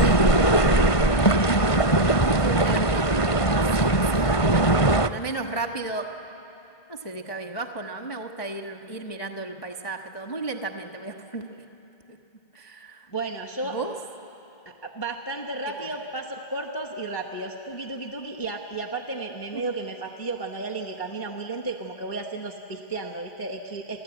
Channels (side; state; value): right; late; 1.5 ms